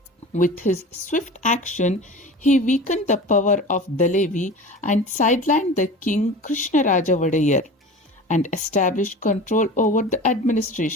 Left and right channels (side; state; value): both; normal; correlation 0.35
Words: With his swift action, he weakened the power of Dalevi and sidelined the king Krishnaraja Wadayar and established control over the